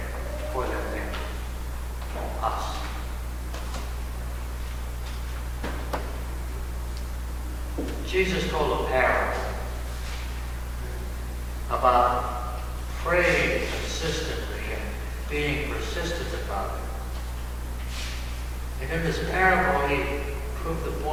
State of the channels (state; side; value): identical; both; correlation 1.00